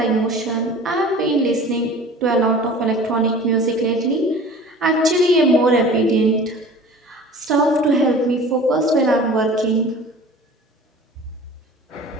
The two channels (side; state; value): both; normal; correlation 0.42